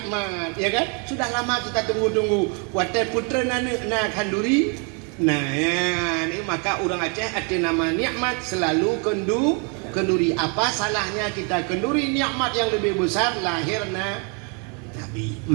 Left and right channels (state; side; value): quieter; left; 36.4 dB